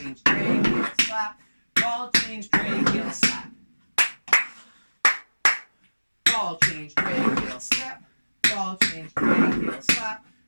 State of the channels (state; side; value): inverted; both; correlation -1.00